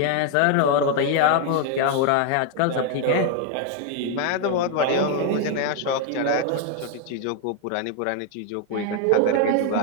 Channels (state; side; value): different; both; correlation 0.00